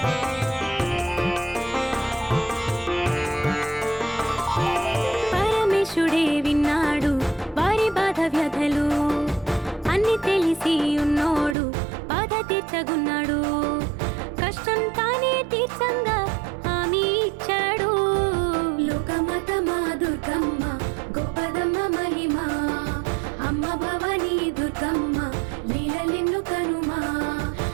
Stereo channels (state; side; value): drops out; left; at 11.6 s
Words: పరమేశుడే విన్నాడు వారి బాధ వ్యధలు అన్ని తెలిసి ఉన్నోడు బాధ తీర్చగున్నాడు కష్టం తానే తీర్చంగా హామీ ఇచ్చాడు లోకమతమా దుర్గమ్మ గొప్పదమ్మ మహిమ అమ్మ భవానీ దుర్గమ్మ లీలలెన్ను కనుమా